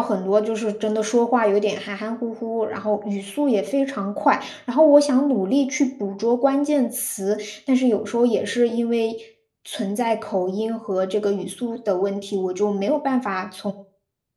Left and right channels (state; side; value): identical; both; correlation 1.00